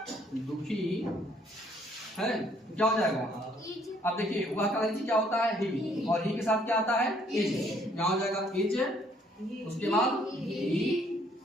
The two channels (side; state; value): both; normal; correlation 0.64